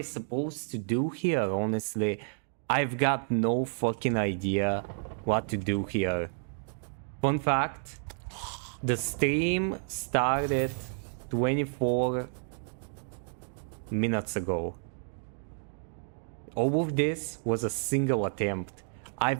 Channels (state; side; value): silent; left; digital silence